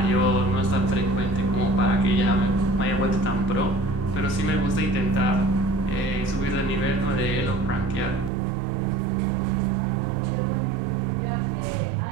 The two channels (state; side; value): drops out; left; at 8.3 s